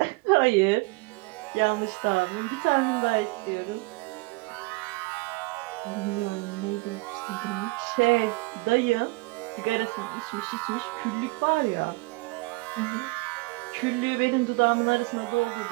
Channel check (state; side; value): quieter; left; 25.3 dB